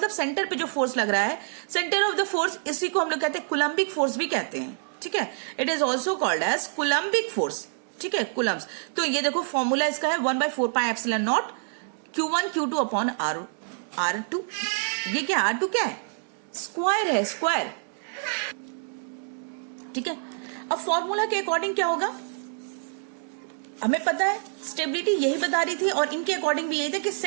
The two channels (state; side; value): silent; left; digital silence